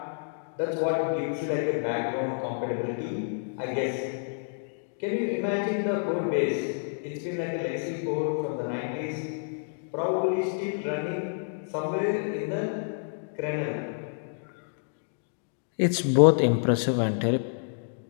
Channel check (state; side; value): silent; right; digital silence